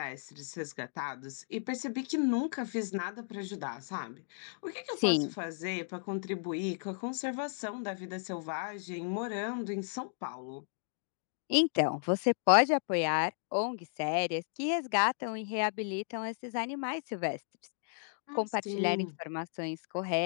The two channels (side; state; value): right; silent; digital silence